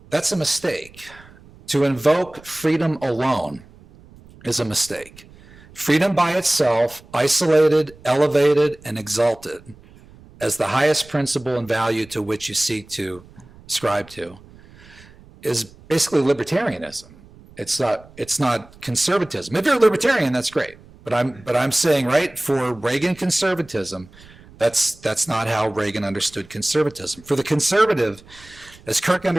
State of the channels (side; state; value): right; noise; rumble, 23 dB below the sound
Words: that's a mistake. To invoke freedom alone is a mistake. Freedom by itself, isolated, elevated, and exalted as the highest principle and value to which you seek to ascribe to, is basically libertarianism. It's not conservatism. If you're a libertarian, that's great. But I'm saying, right, for Reagan conservatism, that's not how Reagan understood conservatism. For the conservative, as Kirk